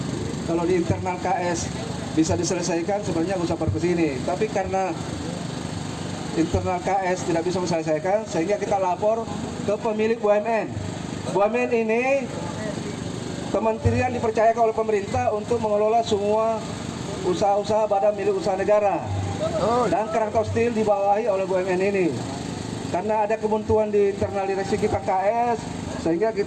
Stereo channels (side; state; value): both; identical; correlation 1.00